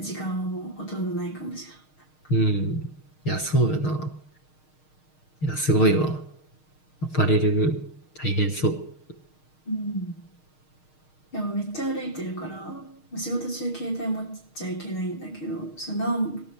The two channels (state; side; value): late; right; 6.5 ms